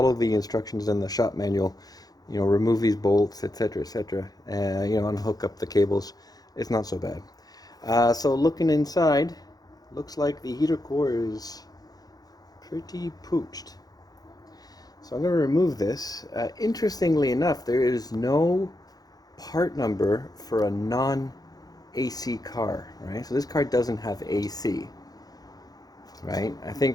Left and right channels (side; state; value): right; late; 0.19 ms